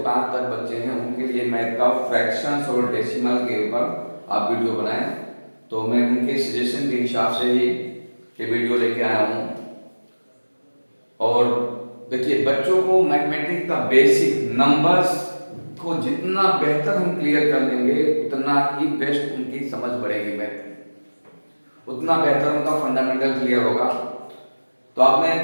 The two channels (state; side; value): inverted; both; correlation -1.00